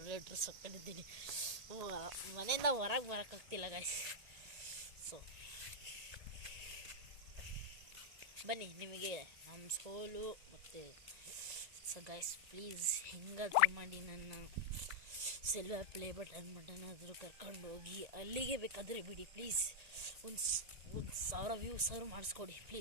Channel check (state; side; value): late; left; 1.8 ms